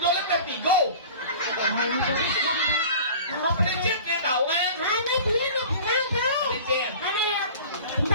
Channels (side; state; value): both; inverted; correlation -0.40